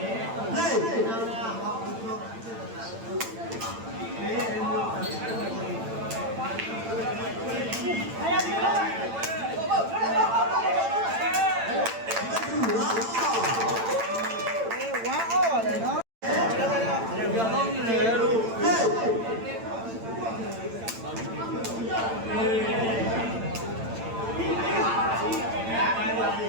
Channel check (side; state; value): left; late; 8.9 ms